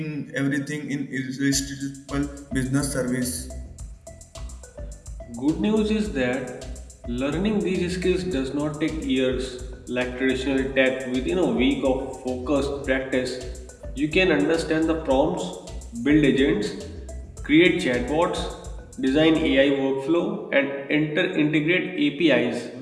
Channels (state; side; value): identical; both; correlation 1.00